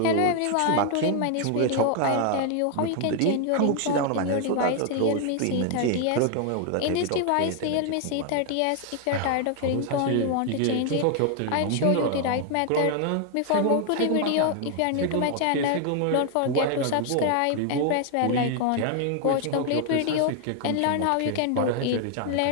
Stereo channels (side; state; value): both; different; correlation 0.00